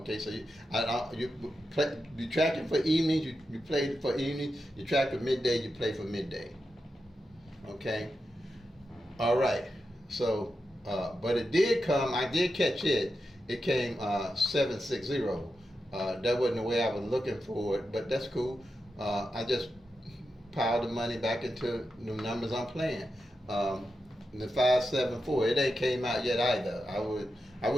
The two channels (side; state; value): both; normal; correlation 0.89